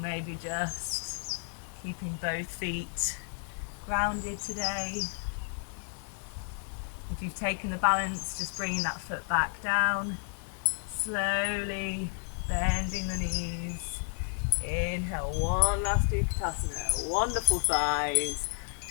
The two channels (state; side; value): silent; right; 57 dB below the other